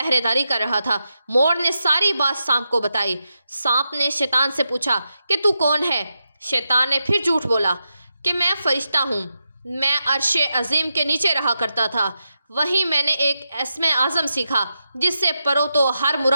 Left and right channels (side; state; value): both; inverted; correlation -0.87